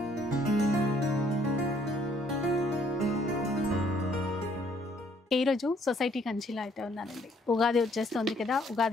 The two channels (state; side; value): normal; both; correlation 0.65